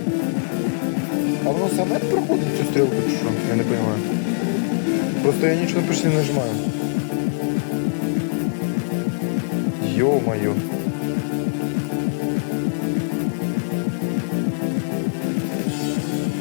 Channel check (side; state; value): right; silent; digital silence